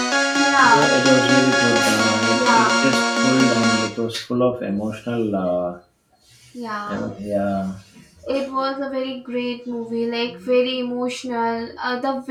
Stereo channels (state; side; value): identical; both; correlation 1.00